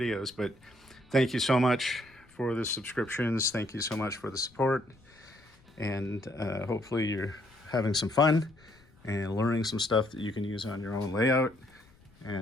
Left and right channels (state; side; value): noise; left; rumble, 29 dB below the sound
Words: But thank you so much for the subscriptions. Thank you so much for the support. And hopefully you're having some fun and learning some stuff that you can use on your own layout.